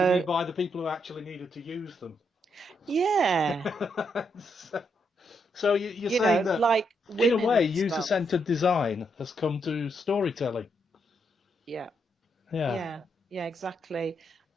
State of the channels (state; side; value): normal; both; correlation 0.78